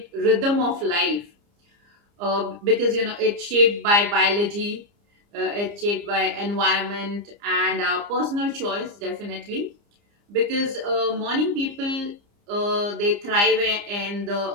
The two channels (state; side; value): late; left; 29 ms